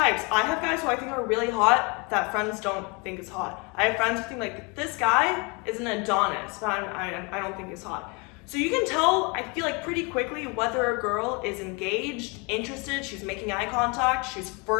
I have guys who I think are really hot that friends don't think is hot. I have friends who think, like, this guy is an Adonis, but I don't think he's hot. So you can tell, I feel like, pretty quickly whether a girl is engaged, interested, she's making eye contact, she's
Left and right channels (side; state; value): right; quieter; 30.2 dB